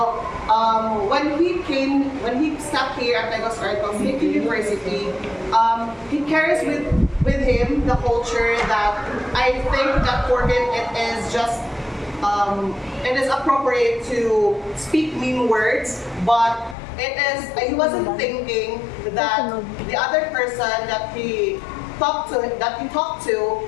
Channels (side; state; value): right; drops out; at 16.8 s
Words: when he stepped here at Negros Arcos State University, he carries with him the culture that I think that for him it is appropriate to speak mean words, but he wasn't thinking that the other person that he talked to